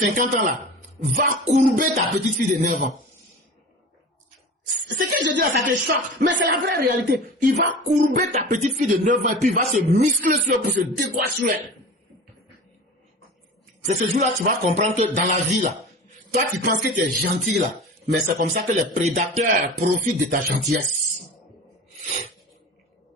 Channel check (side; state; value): both; normal; correlation 0.35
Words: ans là va courber ta petite fille de 9 ans. Ce que je dis là, ça te choque, mais c'est la vraie réalité. Il va courber ta petite fille de 9 ans et puis il va se muscler sur elle pour se décoiffer sur elle. C'est ce jour-là que tu vas comprendre que dans la vie là, toi tu penses que tu es gentil là, mais c'est comme ça que les prédateurs profitent de ta gentillesse.